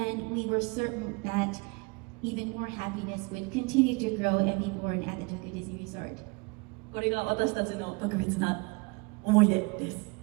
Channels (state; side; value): quieter; left; 28.5 dB